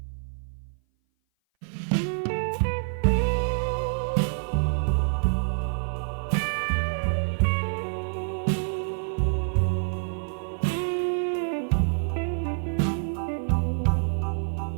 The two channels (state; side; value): silent; left; 57 dB below the other